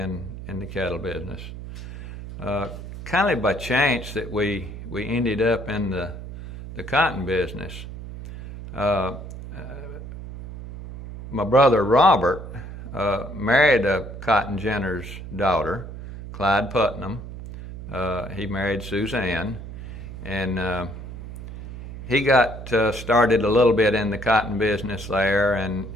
the cattle business. Kind of by chance that we ended up in the cotton business. My brother Robert married a cotton ginner's daughter, Clyde Putnam. He married Suzanne, and he got started a little bit in the cotton business there. And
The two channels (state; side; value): noise; right; hum, 11 dB below the sound